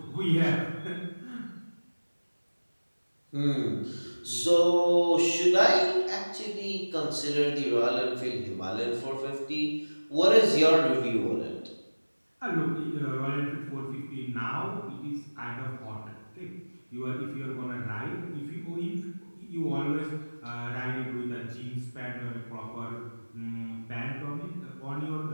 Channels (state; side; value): inverted; both; correlation -1.00